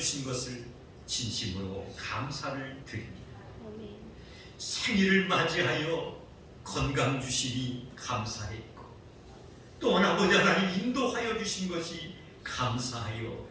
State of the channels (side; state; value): both; identical; correlation 1.00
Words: 것을 진심으로 감사를 드립니다. 생일을 맞이하여 건강 주시니 감사했고 또한 아버지 하나님 인도하여 주신 것이 감사하여